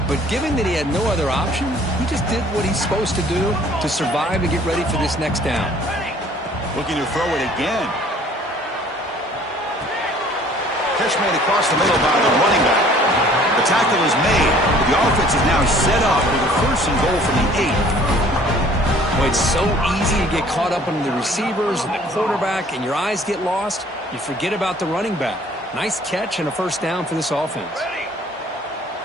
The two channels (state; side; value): normal; both; correlation 0.54